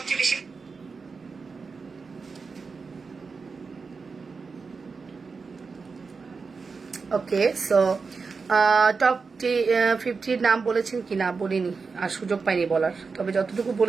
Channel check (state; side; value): quieter; left; 4.8 dB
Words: বেশি ওকে। সো টপ 50 নাম বলেছেন কি না বলিনি, আর সুযোগ পাইনি বলার, তবে যতটুকু